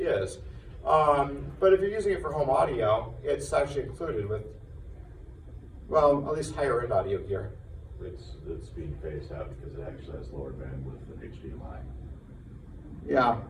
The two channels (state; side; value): identical; both; correlation 1.00